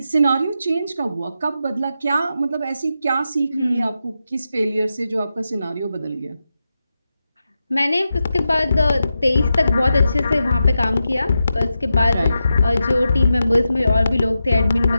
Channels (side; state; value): both; inverted; correlation -0.89